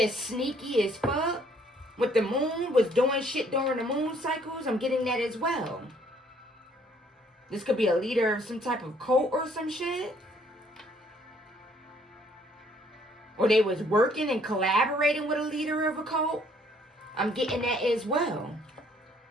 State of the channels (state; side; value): normal; both; correlation 0.63